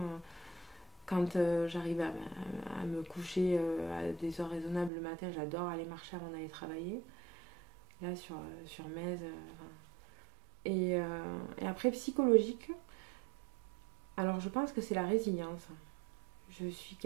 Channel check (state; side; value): drops out; left; at 4.9 s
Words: Quand j'arrive à me coucher à des heures raisonnables le matin, j'adore aller marcher avant d'aller travailler. Là, sur Metz. Et après, psychologique. Alors, je pense que c'est la résilience. Je suis